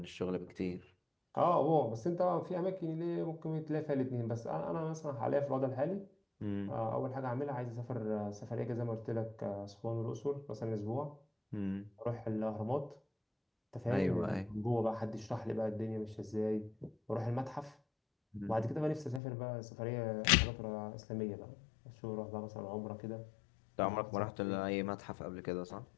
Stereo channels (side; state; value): right; drops out; at 19.2 s